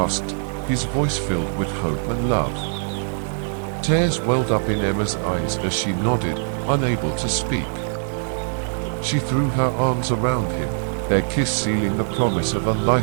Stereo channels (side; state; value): left; silent; digital silence